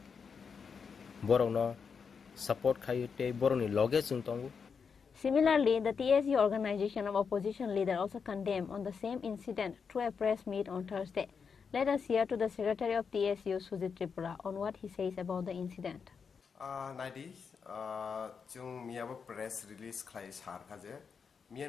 borong no support kaya te borong ni loge sung tongu. Similarly, the TSU organization of opposition leader also condemned on the same incident through a press meet on Thursday. Let us hear to the Secretary of TSU, Chini Tripura, on what he says about the incident. Naidi, jung miabo press release klai sar kaje. Mia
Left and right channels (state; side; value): quieter; right; 6.0 dB